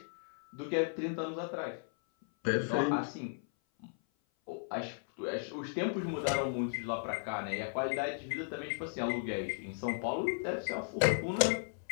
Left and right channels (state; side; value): silent; right; 54 dB below the other